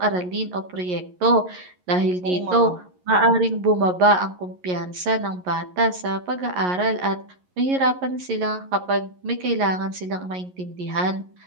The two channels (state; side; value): late; left; 11 ms